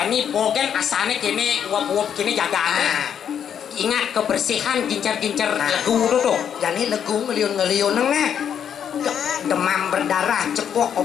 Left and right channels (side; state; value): right; quieter; 8.5 dB